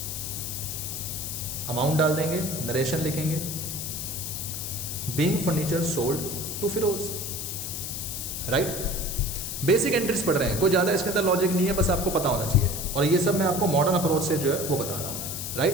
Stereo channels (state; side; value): noise; left; hiss, 5 dB below the sound